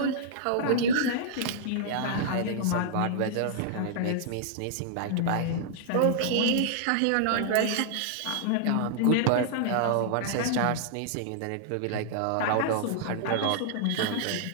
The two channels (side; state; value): both; different; correlation -0.01